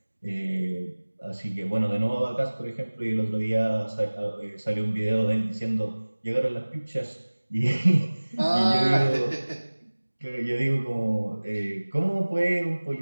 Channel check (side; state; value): both; inverted; correlation -1.00